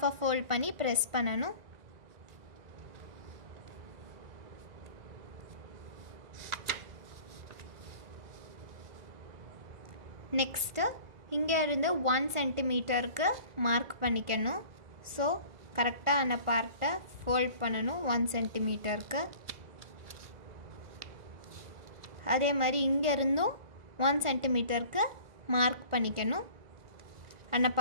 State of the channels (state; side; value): late; left; 1.5 ms